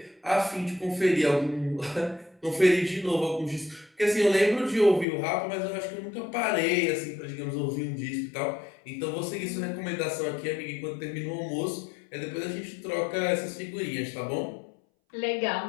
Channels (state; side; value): drops out; right; at 5.1 s